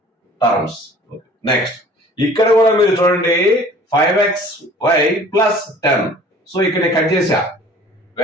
టర్మ్స్. నెక్స్ట్ ఇక్కడ కూడా మీరు చూడండి 5xy + 10. సో ఇక్కడ కట్ చేశా,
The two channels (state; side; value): normal; both; correlation 0.48